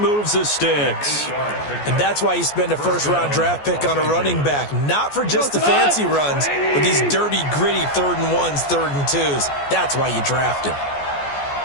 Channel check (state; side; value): late; right; 14 ms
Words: the sticks. And that's why you spend a first-round draft pick on a running back. Not for just the fancy runs, but these dirty, gritty 3rd and 1s, 3rd and 2s. That's why you draft him.